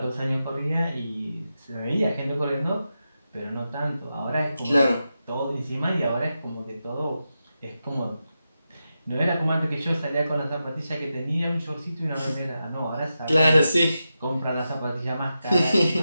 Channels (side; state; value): both; inverted; correlation -0.89